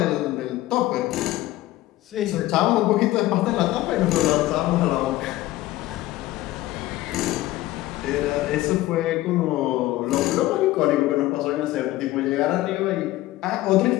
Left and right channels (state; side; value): quieter; right; 16.5 dB